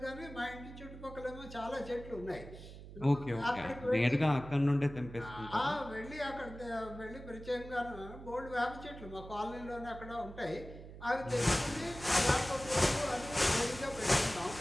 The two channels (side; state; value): right; noise; hum, 14 dB below the sound